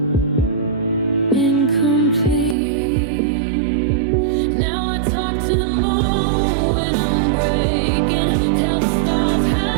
incomplete. Now I talk to the moon when I'm breaking, tell the stars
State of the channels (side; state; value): left; drops out; at 2.6 s